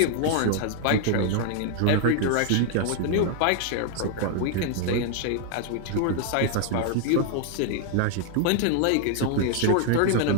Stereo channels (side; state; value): both; different; correlation 0.00